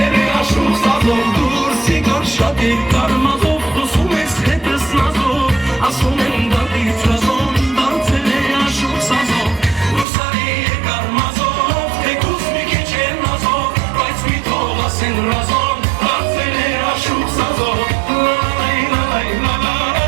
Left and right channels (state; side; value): drops out; left; at 10.1 s